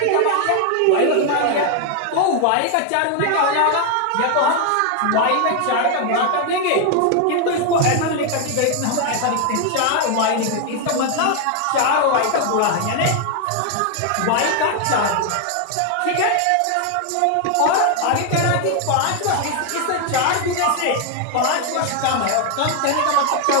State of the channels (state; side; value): different; both; correlation 0.01